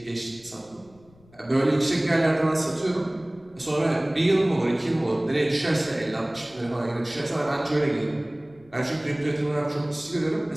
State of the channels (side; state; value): left; noise; rumble, 27 dB below the sound